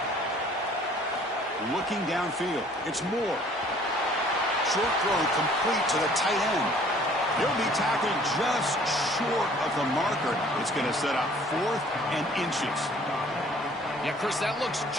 Looking downfield. It's Moore. Short throw complete to the tight end. He'll be tackled just short of the marker. It's going to set up 4th and inches. Yeah, Chris, that looks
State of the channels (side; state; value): both; normal; correlation 0.55